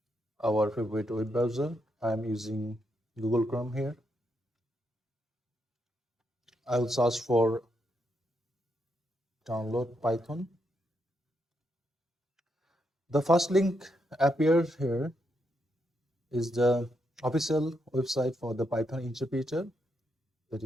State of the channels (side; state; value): both; normal; correlation 0.80